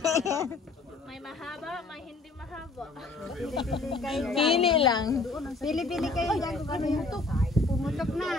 May mahaba, may hindi mahaba. Pili-pili kayo dyan. Pili lang. Pili-pili kayo dyan kung ano yung pumutok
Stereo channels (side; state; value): right; quieter; 3.6 dB